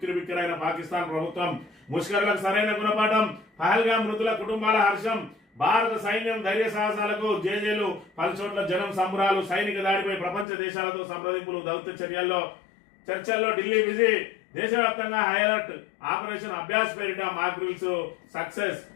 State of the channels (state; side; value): drops out; right; at 10.5 s